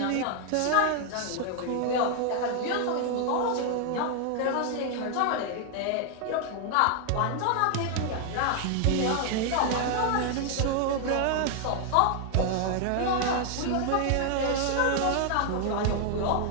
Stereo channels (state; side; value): different; both; correlation 0.00